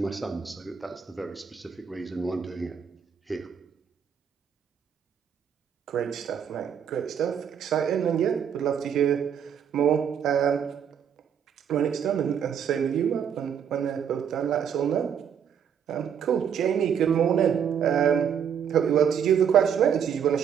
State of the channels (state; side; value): quieter; left; 8.0 dB